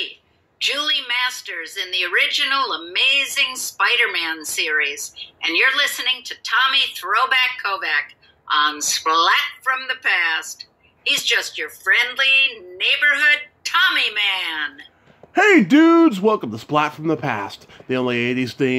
Julie Masters in the original Amazing Spider-Man series, and you're listening to Tommy Throwback Kovac on Splat from the Past. He's just your friendly neighborhood Tommy man. Hey dudes, welcome to Splat from the Past, the only 80s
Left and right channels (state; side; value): identical; both; correlation 1.00